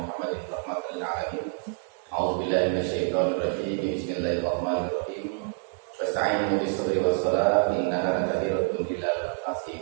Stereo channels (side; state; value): left; silent; 60 dB below the other